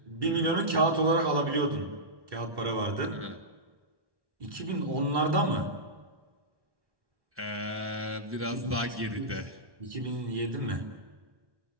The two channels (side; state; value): left; late; 1.1 ms